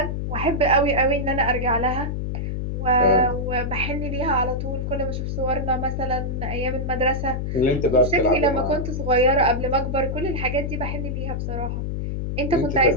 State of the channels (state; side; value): noise; left; hum, 3 dB below the sound